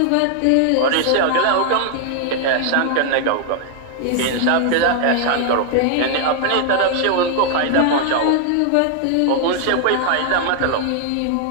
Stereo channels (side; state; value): both; different; correlation 0.00